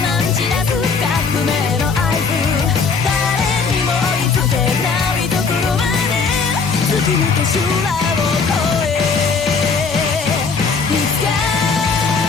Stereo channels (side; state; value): right; quieter; 5.0 dB